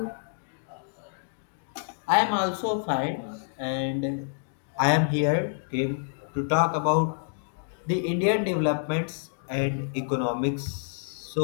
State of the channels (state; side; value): silent; right; digital silence